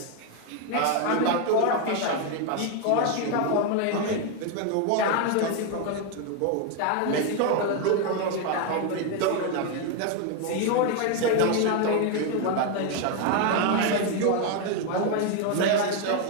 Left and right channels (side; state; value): both; different; correlation 0.01